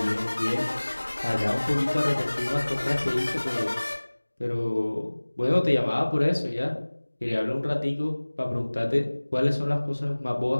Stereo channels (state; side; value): inverted; both; correlation -1.00